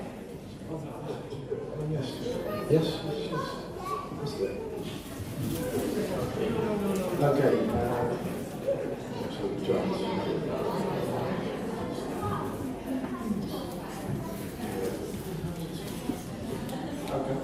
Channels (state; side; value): identical; both; correlation 1.00